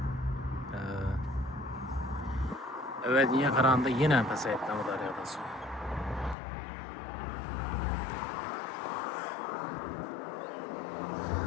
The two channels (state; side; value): drops out; right; at 6.4 s